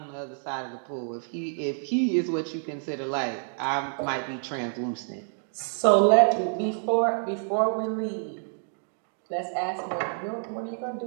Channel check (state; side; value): silent; left; digital silence